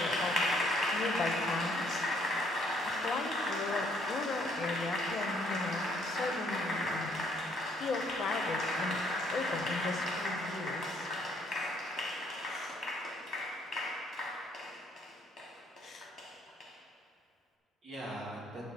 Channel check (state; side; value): normal; both; correlation 0.66